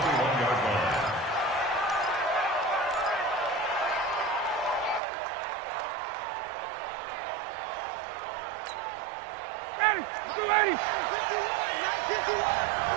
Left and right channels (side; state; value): left; drops out; at 5.0 s